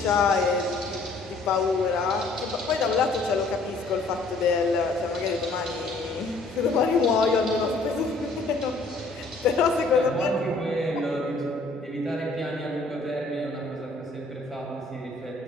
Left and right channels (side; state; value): right; quieter; 3.3 dB